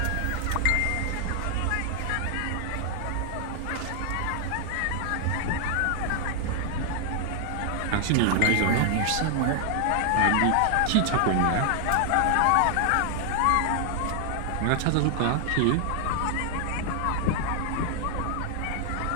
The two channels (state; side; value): different; both; correlation 0.00